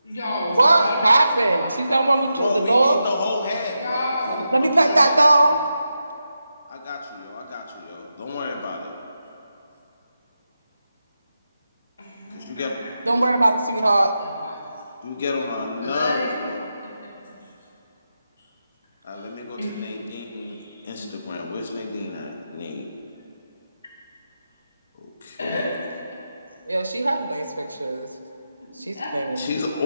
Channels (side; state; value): both; inverted; correlation -0.88